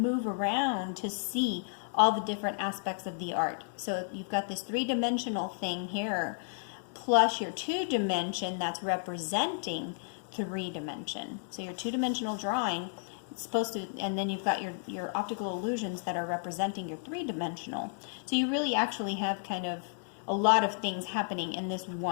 around to see all the different aspects of the art. So you've got this three-dimensional thing here, plus your two-dimension that's representing three-dimension. So your two-dimensional drawing, it's supposed to, and then you've got your optical illusions that are representing your three-dimensional. So you really actually have kind of a lot of things happening in this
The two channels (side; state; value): right; silent; digital silence